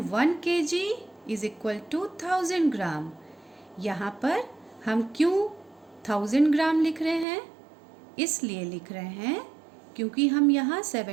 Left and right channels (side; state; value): left; drops out; at 7.2 s